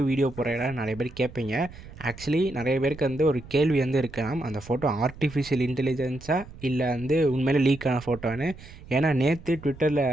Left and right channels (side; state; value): right; noise; rumble, 17 dB below the sound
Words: வீடியோ போடுறா நிறைய பேர் கேட்பீங்க. ஆக்சுவலி நிறைய பேருக்கு வந்து ஒரு கேள்வி வந்து இருக்கலாம், அந்த ஃபோட்டோ ஆர்டிஃபிஷியல் இன்டெலிஜென்ஸாக இல்லை வந்து உண்மையிலே லீக் ஆன ஃபோட்டோன்னு. ஏன்னா நேற்று ட்விட்டரில்